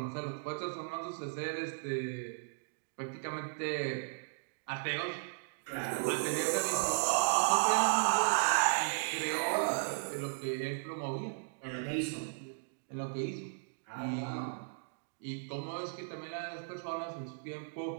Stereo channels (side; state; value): left; silent; digital silence